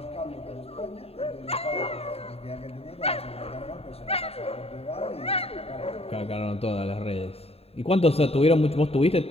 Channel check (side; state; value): right; late; 0.29 ms